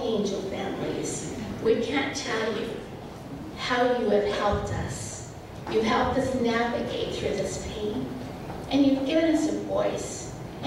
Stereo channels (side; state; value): both; identical; correlation 1.00